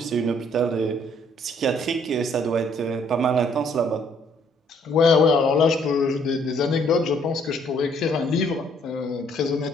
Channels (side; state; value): both; normal; correlation 0.65